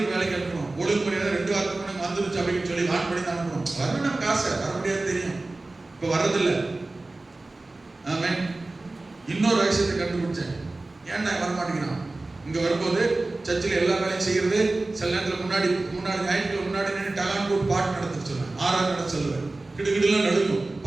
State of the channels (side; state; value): left; quieter; 3.1 dB